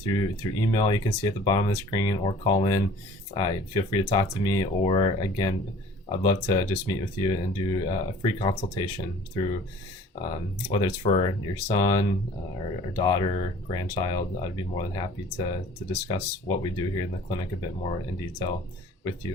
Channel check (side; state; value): both; normal; correlation 0.49